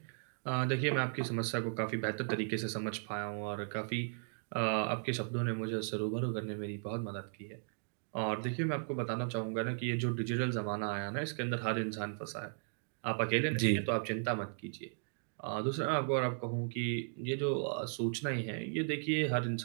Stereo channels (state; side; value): silent; left; digital silence